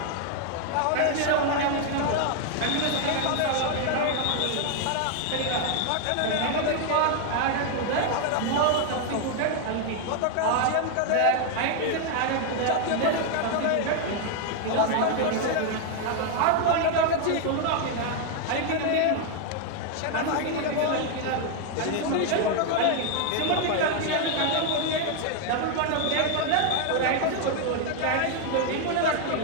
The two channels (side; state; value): both; different; correlation 0.00